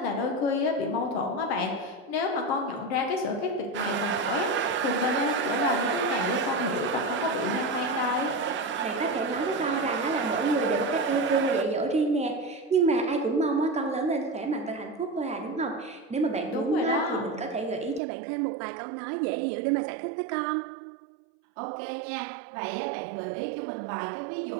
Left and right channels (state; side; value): drops out; left; at 18.0 s